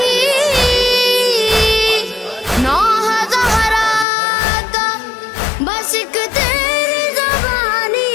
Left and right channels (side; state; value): right; drops out; at 4.0 s